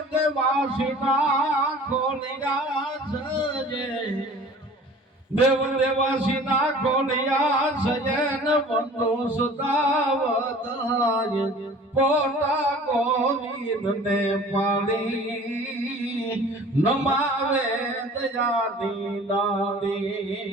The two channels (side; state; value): both; normal; correlation 0.45